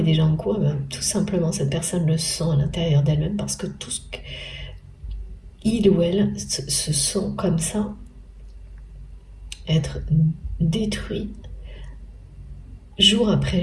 déjà en cours? Eh bien, tout simplement, cette personne le sent à l'intérieur d'elle-même parce que tout ce qu'il ou elle se sent comme ça, être détruit jour après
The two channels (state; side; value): identical; both; correlation 1.00